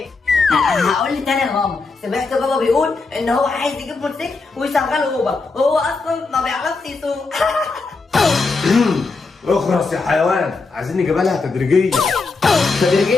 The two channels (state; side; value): quieter; right; 4.0 dB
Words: هقول لي تاني يا ماما. سمعت بابا بيقول ان هو عايز يجيب موتوسيكل ويشغله اوبر، وهو اصلا ما بيعرفش يسوق. اخرس يا حيوان، عايزين نجيبها لها تدريجيا.